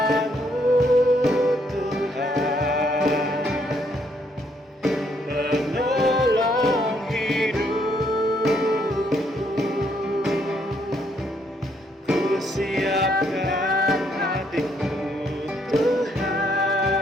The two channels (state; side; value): normal; both; correlation 0.71